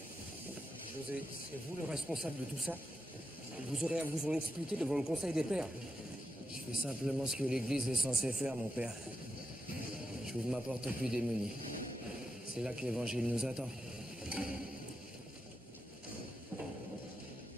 José, c'est vous le responsable de tout ça? Vous aurez à vous en expliquer devant le Conseil des Pères. Je fais simplement ce que l'Église est censée faire, mon père. J'ouvre ma porte aux plus démunis. C'est là que l'Évangile nous attend.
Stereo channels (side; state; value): both; normal; correlation 0.87